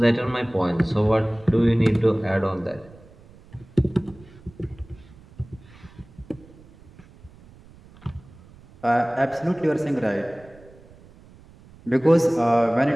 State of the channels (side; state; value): right; noise; rumble, 24 dB below the sound